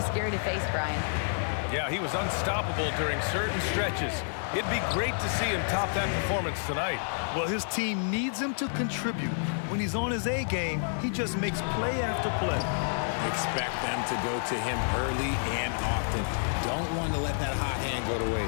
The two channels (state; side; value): silent; right; digital silence